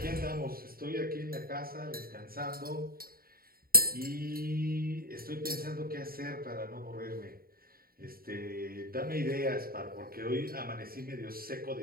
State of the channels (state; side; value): late; left; 0.43 ms